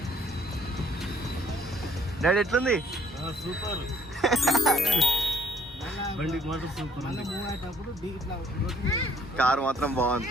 డాడీ ఎట్లుంది? సూపర్. బండికి మాత్రం సూపర్. కారు మాత్రం బాగుంది.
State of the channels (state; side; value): normal; both; correlation 0.64